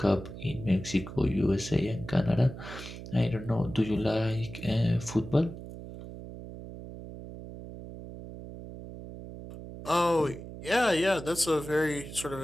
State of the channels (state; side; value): noise; right; hum, 12 dB below the sound